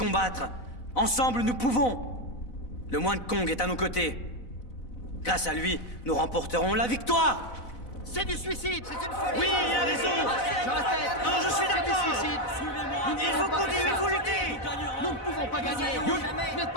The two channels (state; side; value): late; right; 4.0 ms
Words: Ensemble, nous pouvons. Le moine Kong est à nos côtés. Grâce à lui, nous remporterons la victoire. C'est du suicide, c'est une folie. Oui, il a raison. Je répète. Non, je suis d'accord. C'est du suicide. Il faut continuer, il faut lutter. Nous ne pouvons pas gagner. Vous n'êtes